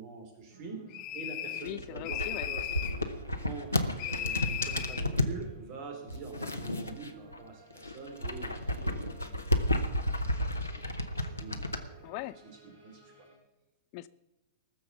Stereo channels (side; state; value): both; inverted; correlation -0.55